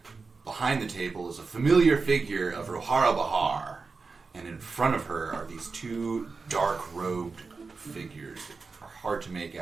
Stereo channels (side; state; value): left; quieter; 4.4 dB